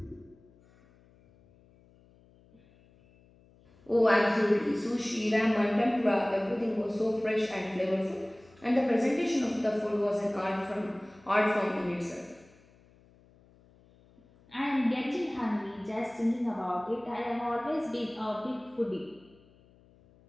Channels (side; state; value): left; noise; hum, 29 dB below the sound